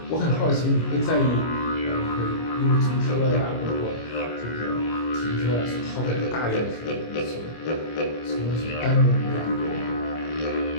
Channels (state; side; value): late; right; 25 ms